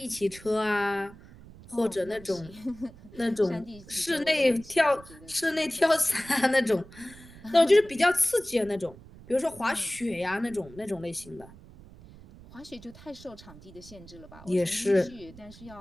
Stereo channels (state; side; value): noise; right; rumble, 20 dB below the sound